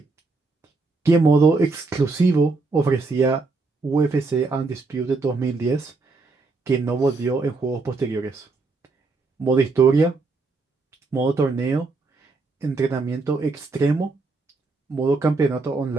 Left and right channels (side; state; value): left; quieter; 3.8 dB